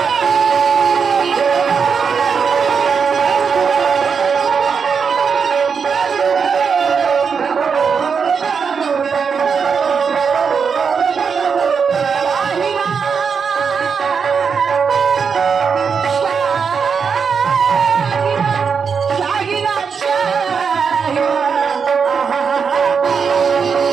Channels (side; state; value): left; quieter; 6.1 dB